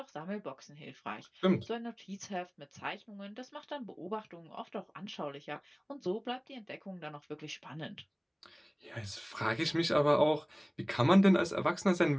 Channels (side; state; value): both; identical; correlation 1.00